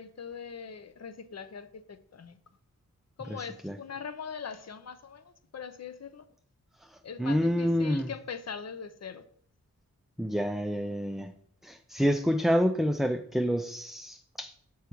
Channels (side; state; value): both; normal; correlation 0.87